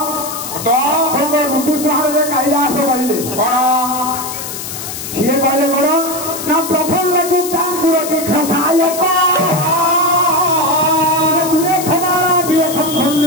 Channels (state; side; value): noise; left; hiss, 8 dB below the sound